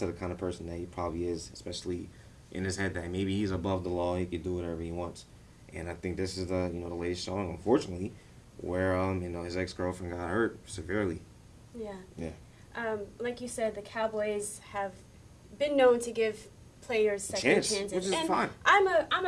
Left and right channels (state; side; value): identical; both; correlation 1.00